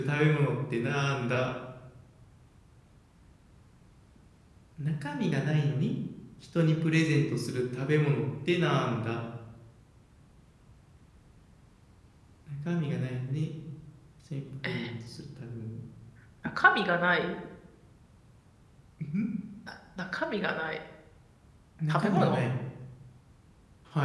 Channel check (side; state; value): both; identical; correlation 1.00